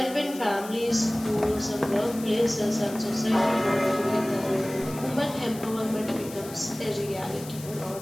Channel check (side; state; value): left; noise; hiss, 15 dB below the sound